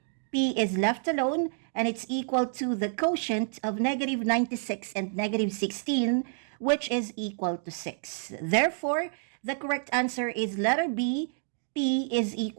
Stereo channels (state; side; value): silent; left; digital silence